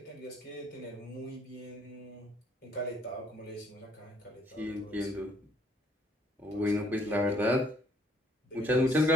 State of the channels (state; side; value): normal; both; correlation 0.65